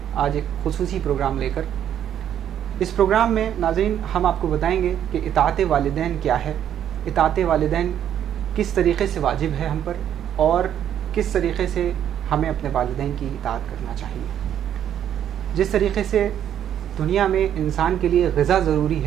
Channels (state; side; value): quieter; left; 10.1 dB